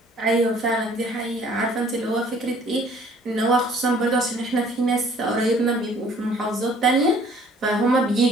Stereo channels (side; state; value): both; normal; correlation 0.56